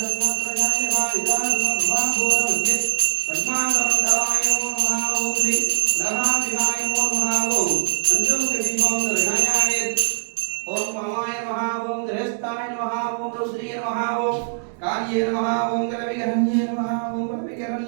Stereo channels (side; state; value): left; silent; digital silence